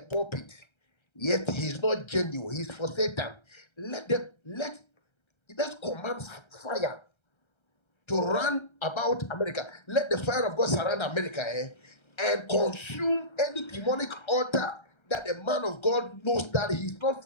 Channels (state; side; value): late; right; 1.3 ms